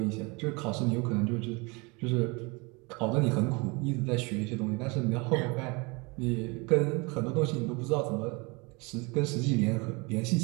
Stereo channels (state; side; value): quieter; left; 28.2 dB